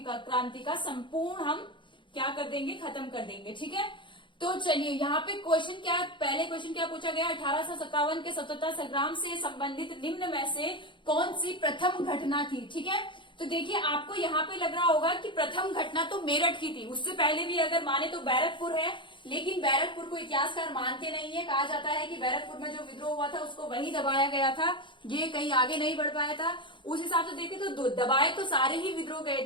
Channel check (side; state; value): right; late; 0.23 ms